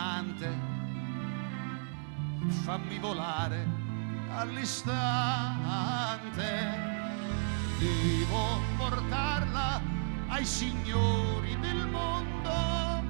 Fammi volare all'istante, devo portarla ai signori del mondo.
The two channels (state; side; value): silent; left; 56 dB below the other